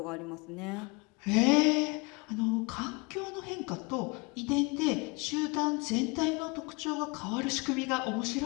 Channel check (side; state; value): right; quieter; 28.1 dB